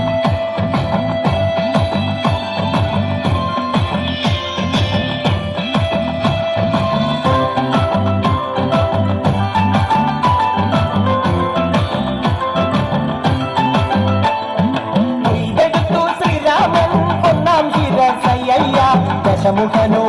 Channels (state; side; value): identical; both; correlation 1.00